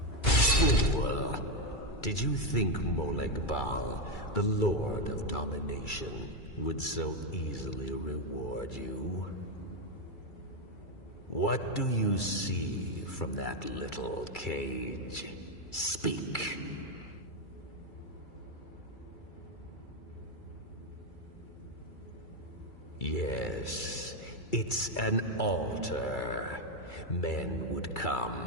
Fool! Did you think Moleg Bal, the Lord of Domination, would so easily reward you? What do you see from that little cage? Speak! Yes, it's an altar. Men would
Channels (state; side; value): late; right; 2.3 ms